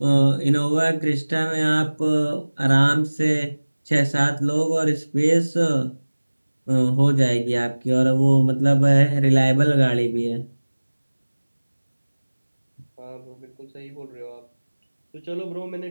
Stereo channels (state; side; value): inverted; both; correlation -1.00